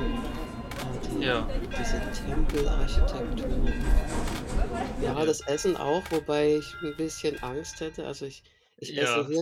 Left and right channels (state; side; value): identical; both; correlation 1.00